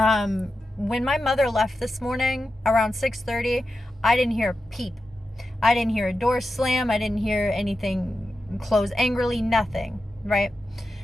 my mother left this morning around 6:30, I didn't hear a peep. I didn't hear a door slam. I didn't hear anything close angrily, nothing, right?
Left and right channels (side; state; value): both; normal; correlation 0.90